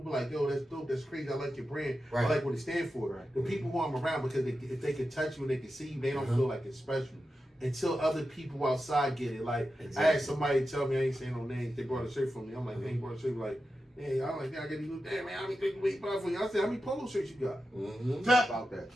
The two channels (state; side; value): normal; both; correlation 0.91